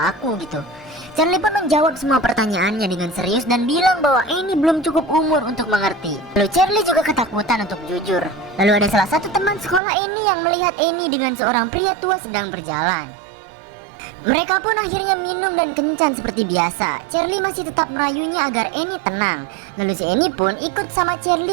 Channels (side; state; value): left; drops out; at 9.8 s